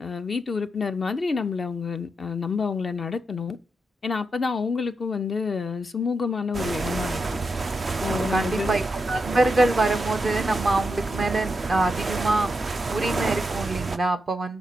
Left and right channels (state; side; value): normal; both; correlation 0.84